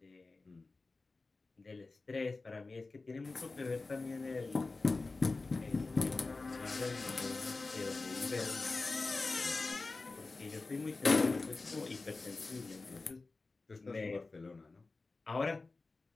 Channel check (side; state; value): right; quieter; 3.6 dB